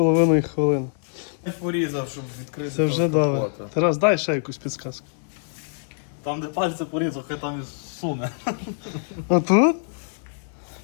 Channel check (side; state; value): right; silent; digital silence